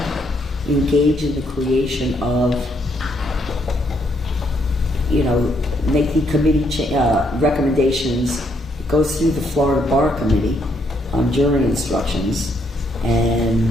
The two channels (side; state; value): both; normal; correlation 0.73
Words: engage in the creation of, make the committee recommendations. It goes through the Florida Bar Committee on jury instructions, and